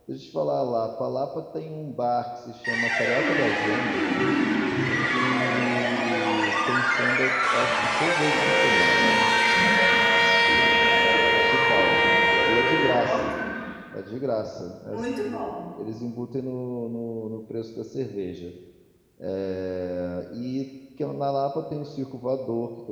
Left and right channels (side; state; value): both; identical; correlation 1.00